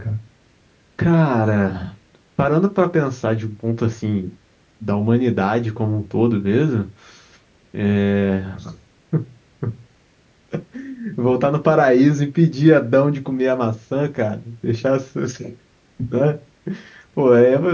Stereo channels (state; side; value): identical; both; correlation 1.00